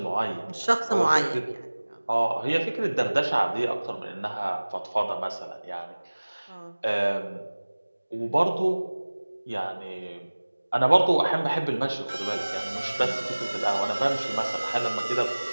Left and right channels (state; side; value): inverted; both; correlation -1.00